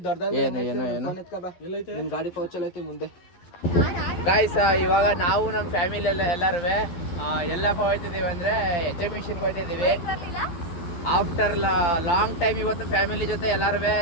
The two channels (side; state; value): right; late; 12 ms